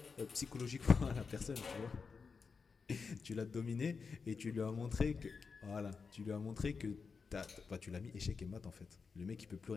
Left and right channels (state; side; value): quieter; right; 5.2 dB